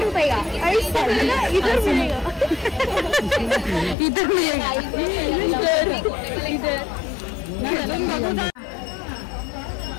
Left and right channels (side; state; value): right; drops out; at 4.0 s